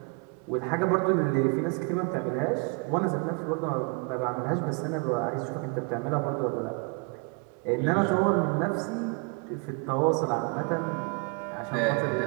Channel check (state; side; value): quieter; left; 31.9 dB